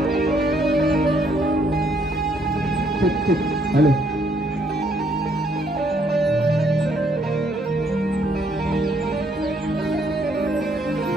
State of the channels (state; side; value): normal; both; correlation 0.69